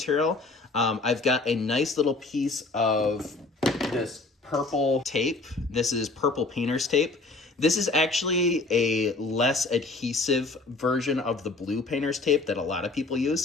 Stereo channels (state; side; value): quieter; right; 3.4 dB